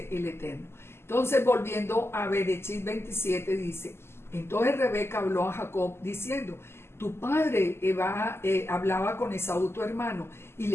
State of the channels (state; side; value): late; right; 0.12 ms